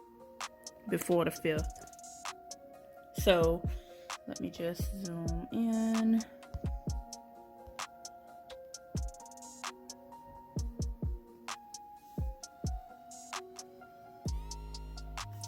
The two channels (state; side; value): identical; both; correlation 1.00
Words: before the 5th. So let me just zoom in.